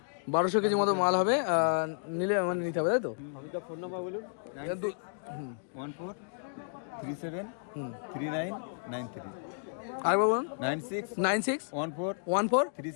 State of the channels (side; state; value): right; silent; digital silence